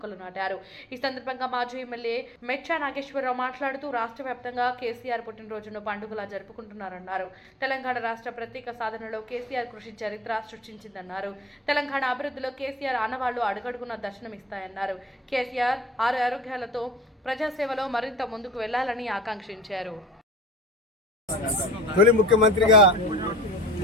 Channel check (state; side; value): normal; both; correlation 0.46